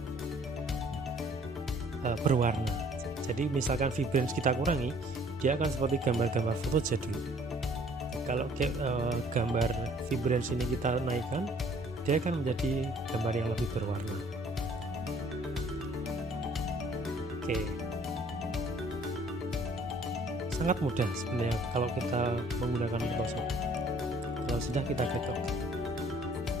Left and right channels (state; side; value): normal; both; correlation 0.57